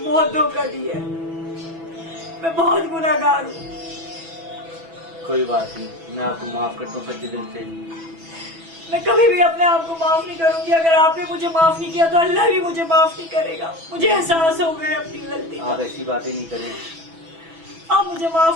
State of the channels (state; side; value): late; left; 6.1 ms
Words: बहुत धोखा दिया है, मैं बहुत गुनहगार हूँ। कोई बात नहीं, मैं आपको माफ करता हूँ सच्चे दिल से। मैं कभी भी अपने आप को माफ नहीं करूंगी। अगर आपने मुझे माफ नहीं किया तो अल्लाह भी मुझे माफ नहीं करेगा। मुझे एहसास हो गया अपनी गलती का। आप ऐसी बातें नहीं करें। आप मुझे